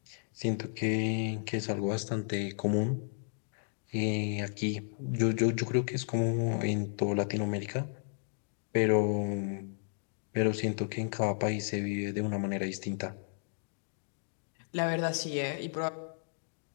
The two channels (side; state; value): right; silent; digital silence